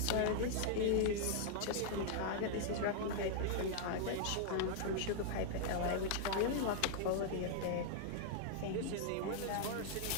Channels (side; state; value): both; different; correlation -0.01